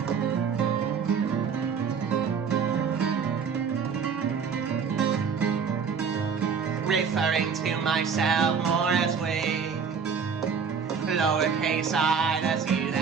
Referring to myself more as we, lowercase I, that's you,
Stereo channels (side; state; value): left; quieter; 6.2 dB